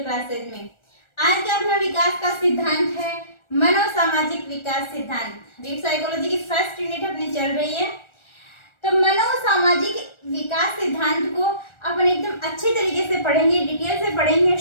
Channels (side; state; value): right; late; 1.4 ms